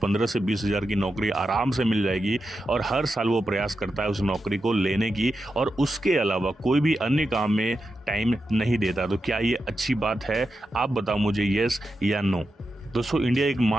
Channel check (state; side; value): normal; both; correlation 0.89